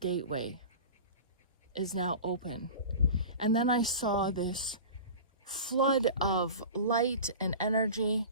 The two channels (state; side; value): inverted; both; correlation -0.34